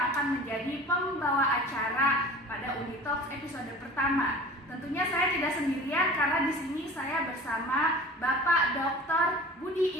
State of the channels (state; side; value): normal; both; correlation 0.41